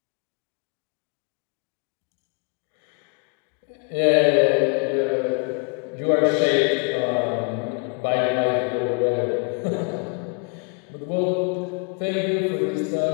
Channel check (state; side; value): quieter; right; 38.0 dB